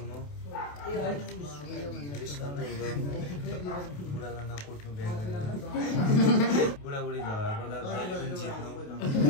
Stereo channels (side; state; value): right; late; 28 ms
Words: बुढालाई नकुट्नु बिहा गरेर। बुढाबुढी झगडा पर्दा जहिले पनि जित्नु।